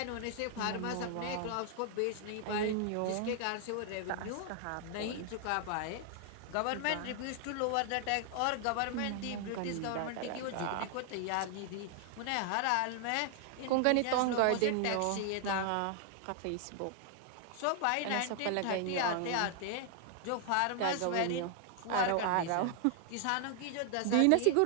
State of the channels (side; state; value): both; different; correlation 0.00